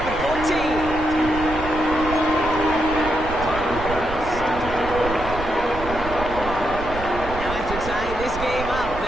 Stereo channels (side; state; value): right; noise; rumble, 9 dB below the sound